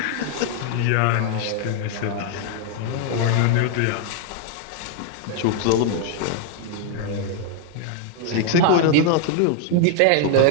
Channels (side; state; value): both; different; correlation 0.00